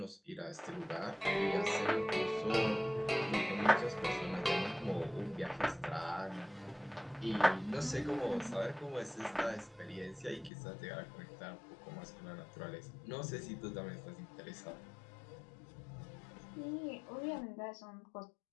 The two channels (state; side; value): drops out; right; at 10.5 s